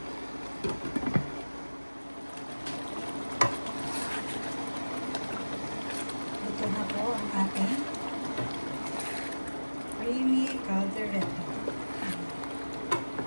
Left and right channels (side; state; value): both; inverted; correlation -1.00